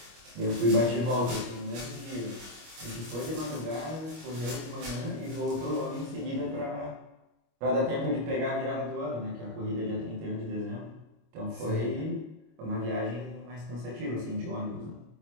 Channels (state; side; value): late; left; 25 ms